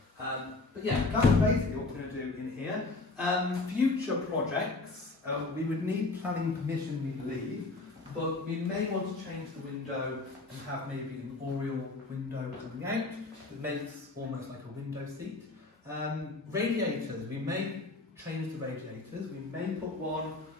But yeah, that's basically what we're going to do in here. Future projects, we would need planning permission, we believe, but we may want to change the window and have maybe an oriel window coming out that makes almost like a window seat. Radiators, we may change the radiators. We may put one,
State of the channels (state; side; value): quieter; right; 3.4 dB